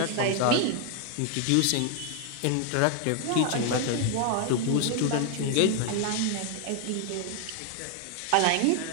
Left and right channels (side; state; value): both; different; correlation 0.01